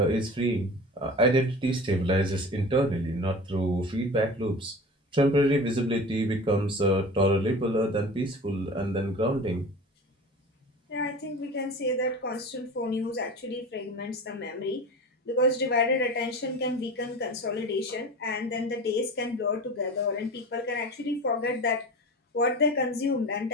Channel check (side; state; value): both; normal; correlation 0.34